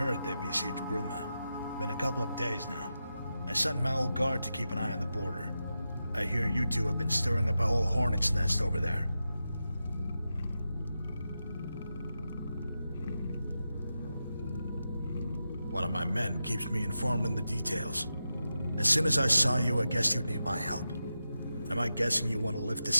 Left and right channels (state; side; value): inverted; both; correlation -0.90